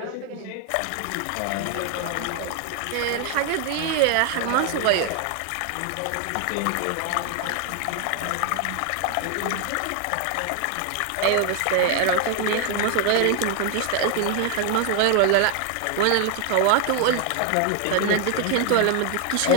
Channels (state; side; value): different; both; correlation 0.00